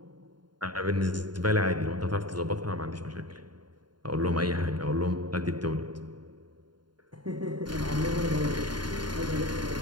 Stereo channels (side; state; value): left; late; 0.71 ms